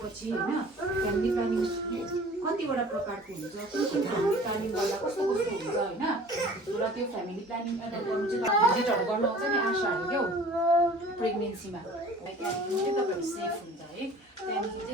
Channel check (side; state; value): both; normal; correlation 0.46